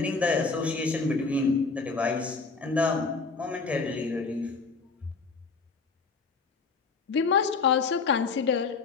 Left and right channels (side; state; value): right; quieter; 4.5 dB